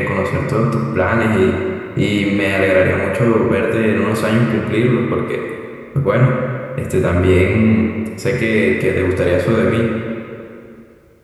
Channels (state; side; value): identical; both; correlation 1.00